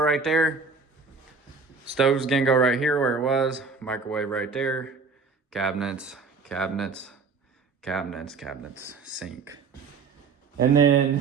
there. Stove's gonna go right here where it was. Microwave right there. cabinets, cabinets, cabinets, cabinets, sink. And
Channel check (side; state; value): left; quieter; 4.5 dB